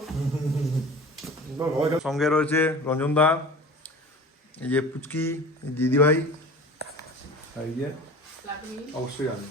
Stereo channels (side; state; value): both; normal; correlation 0.38